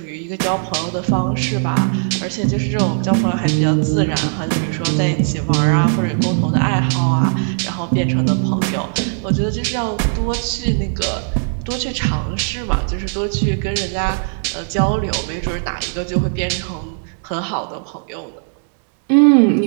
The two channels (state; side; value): silent; left; digital silence